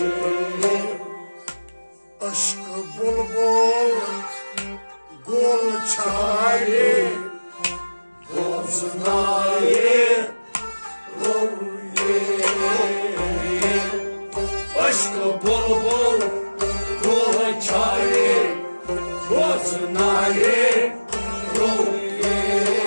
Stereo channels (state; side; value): inverted; both; correlation -1.00